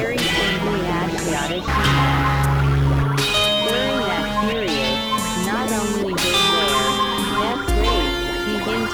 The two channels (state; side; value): identical; both; correlation 1.00